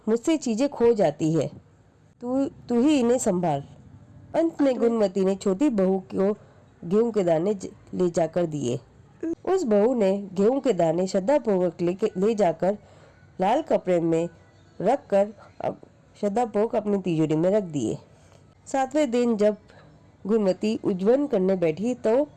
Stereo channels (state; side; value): identical; both; correlation 1.00